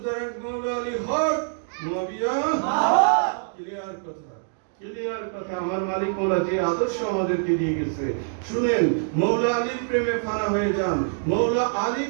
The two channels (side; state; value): left; silent; digital silence